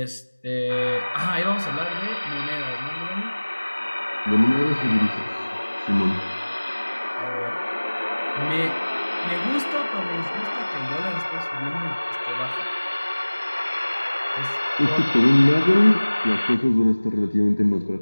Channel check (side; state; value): both; inverted; correlation -1.00